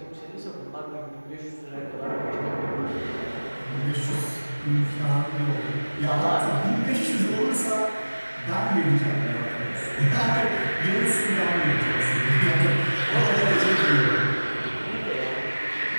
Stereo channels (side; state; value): both; inverted; correlation -1.00